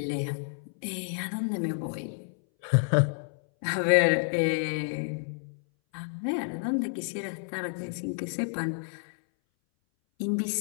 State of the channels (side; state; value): right; silent; 58 dB below the other